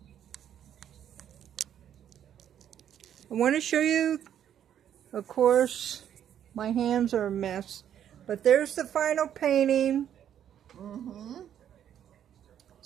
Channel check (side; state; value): left; quieter; 9.9 dB